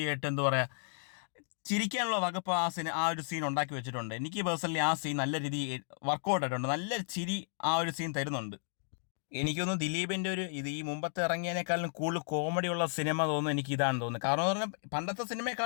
ആയിട്ട് എന്താ പറയുക, ചിരിക്കാനുള്ള വകുപ്പ് ആ ഒരു സീൻ ഉണ്ടാക്കി വെച്ചിട്ടുണ്ട്. എനിക്ക് പേഴ്സണലി ആ സീൻ നല്ല രീതിയിൽ വർക്കൗട്ട് ആയിട്ടുണ്ട്. നല്ല ചിരി ആ ഒരു സീൻ തരുന്നുണ്ട്. എനിക്കൊന്ന് ദിലീപിൻ്റെ ഈ മുമ്പത്തെ ഇറങ്ങിയതിനേക്കാളും കൂടുതൽ കോമഡിയുള്ള സിനിമ തോന്നുന്നു എനിക്ക് ഇതാണെന്ന് തോന്നുന്നു. കാരണം എന്ന് പറഞ്ഞാൽ പണ്ടത്തെ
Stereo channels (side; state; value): right; silent; digital silence